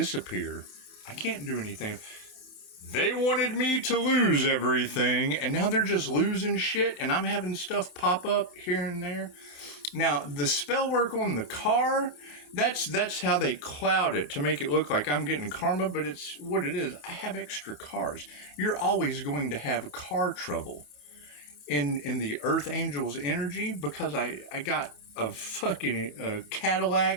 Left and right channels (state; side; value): late; right; 27 ms